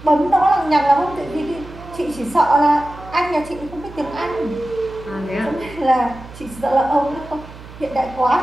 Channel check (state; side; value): noise; right; hum, 17 dB below the sound